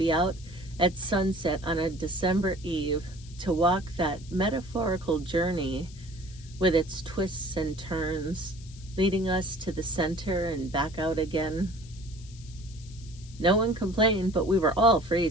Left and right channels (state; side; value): noise; left; hiss, 21 dB below the sound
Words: out at sunset on a December eve, to walk that metaphorical journey with its twists and turns, leading us to the center and back out again. No one complained, but we were all